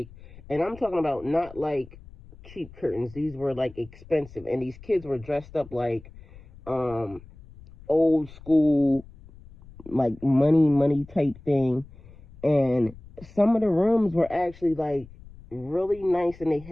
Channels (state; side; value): noise; left; rumble, 20 dB below the sound